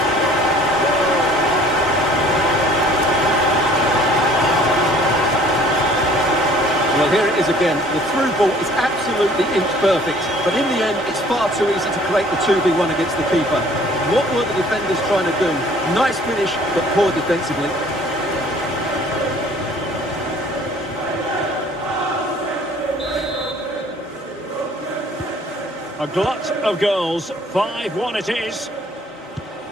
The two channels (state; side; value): normal; both; correlation 0.54